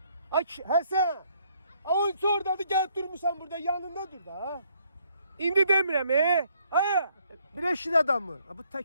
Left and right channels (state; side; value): inverted; both; correlation -0.68